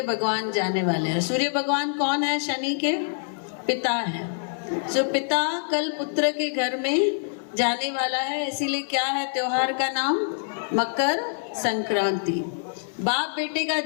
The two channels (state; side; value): silent; right; digital silence